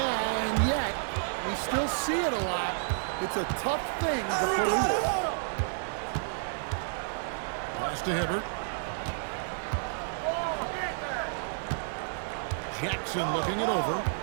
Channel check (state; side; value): silent; left; digital silence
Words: and yet, we still see it a lot. It's a tough thing to police. Pass to Hibbert. Jackson looking it over.